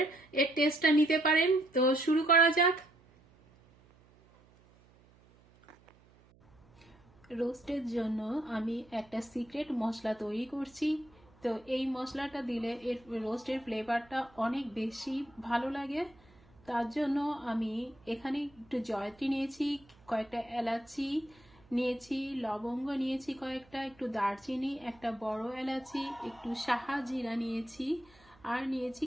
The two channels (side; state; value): right; noise; hum, 28 dB below the sound